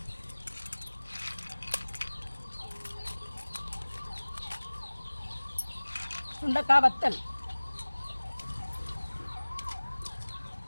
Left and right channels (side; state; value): both; inverted; correlation -1.00